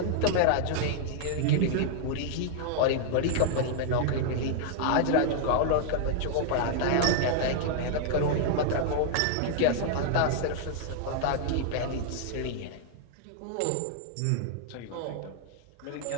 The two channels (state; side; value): different; both; correlation -0.01